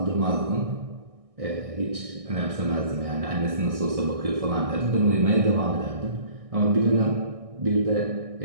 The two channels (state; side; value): late; left; 1.6 ms